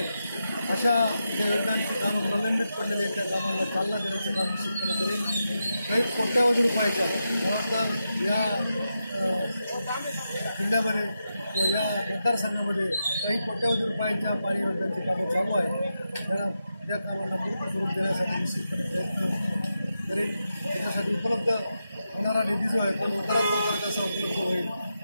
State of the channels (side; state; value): both; inverted; correlation -0.87